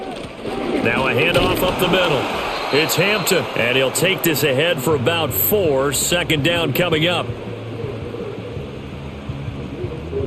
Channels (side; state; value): both; identical; correlation 1.00